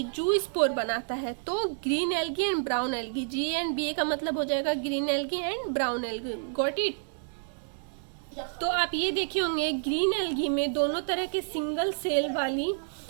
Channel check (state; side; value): silent; left; digital silence